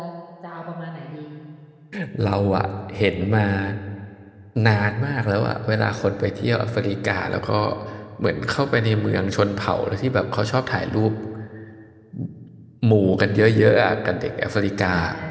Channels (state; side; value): identical; both; correlation 1.00